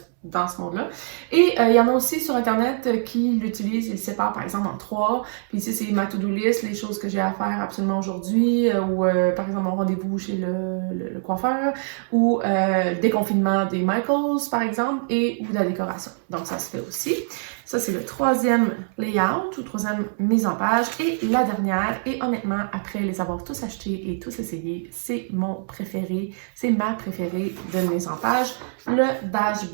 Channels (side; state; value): left; silent; digital silence